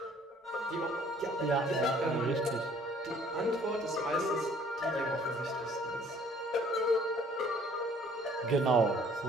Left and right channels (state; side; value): normal; both; correlation 0.58